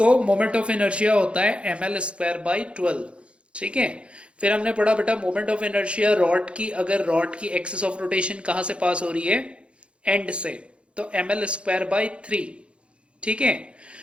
मोमेंट ऑफ इनर्शिया होता है ml² बाई 12। ठीक है, फिर हमने पढ़ा बेटा मोमेंट ऑफ इनर्शिया रॉड की, अगर रॉड की एक्सिस ऑफ रोटेशन कहां से पास हो रही है, एंड से, तो ml²बाई 3। ठीक है,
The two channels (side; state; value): left; late; 0.059 ms